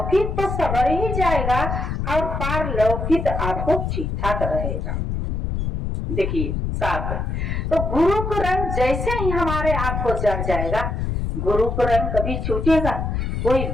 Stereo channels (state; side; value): noise; left; rumble, 2 dB below the sound